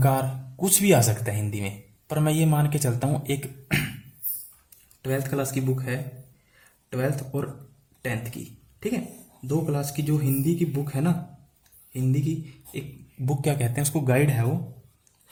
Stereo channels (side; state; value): both; identical; correlation 1.00